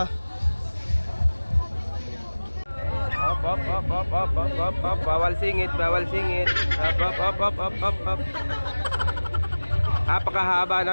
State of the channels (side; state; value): both; inverted; correlation -1.00